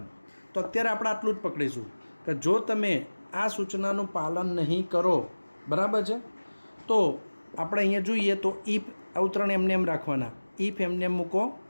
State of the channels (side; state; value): both; inverted; correlation -1.00